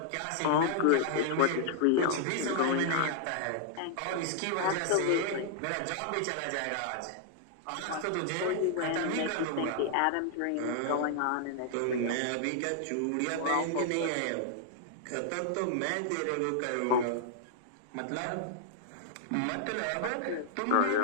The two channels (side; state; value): both; different; correlation -0.01